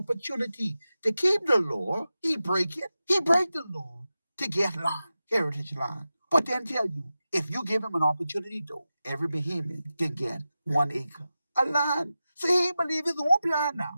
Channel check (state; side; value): inverted; both; correlation -0.93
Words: to keep the law, he break it. He break the law to get land, heritage land. But then tell you, if you give him an opportunity though, every Bahamian can get 1 acre of land. So he believed his own plan